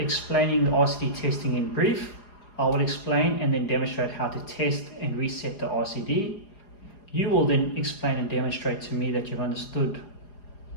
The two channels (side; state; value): right; late; 4.8 ms